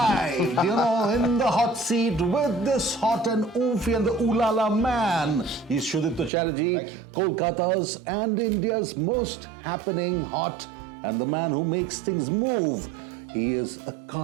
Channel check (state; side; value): drops out; left; at 6.3 s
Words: in the hot seat with this hot and oofy and the ooh la la man. He's Shudipto Chatterjee, Thank you. Kolkata's and India's most happening hot and the man who makes things move. He is a